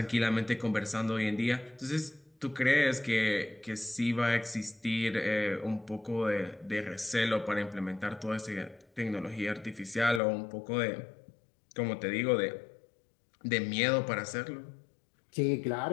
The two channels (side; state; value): right; drops out; at 10.2 s